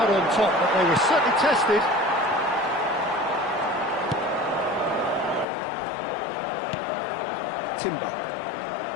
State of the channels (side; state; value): right; drops out; at 5.5 s